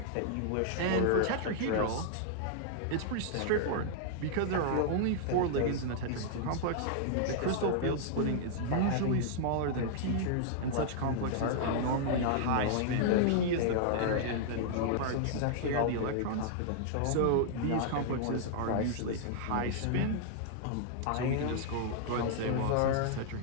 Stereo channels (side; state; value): both; different; correlation -0.01